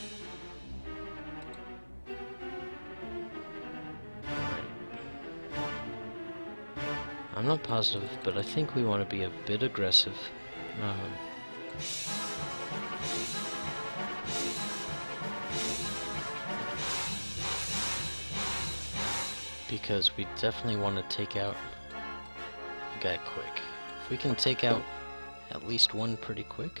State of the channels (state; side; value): inverted; both; correlation -1.00